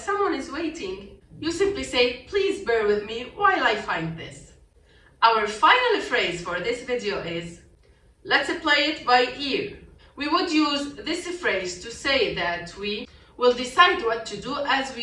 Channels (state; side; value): identical; both; correlation 1.00